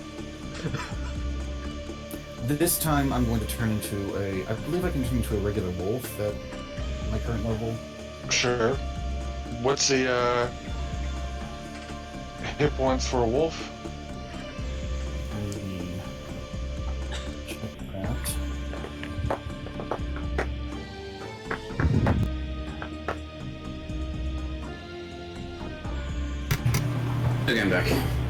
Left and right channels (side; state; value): both; identical; correlation 1.00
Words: This time I'm going to turn into a... I believe I can turn into a regular wolf at my current level. Sure. What's the hit points for a wolf? Let me check that. Okay, I'm back.